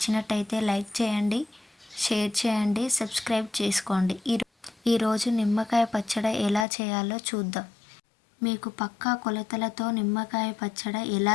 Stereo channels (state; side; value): drops out; right; at 6.7 s